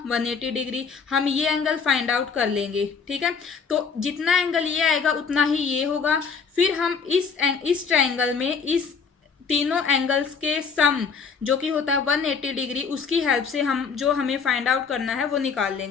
180 डिग्री। हम ये एंगल फाइंड आउट कर लेंगे। ठीक है, तो जितना एंगल ये आएगा उतना ही ये होगा। फिर हम इस ट्राइंगल में इस तीनों एंगल्स के सम जो कि होता है 180 डिग्री, उसकी हेल्प से हम जो हमें फाइंड आउट करना है वो निकाल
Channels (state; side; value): quieter; right; 5.7 dB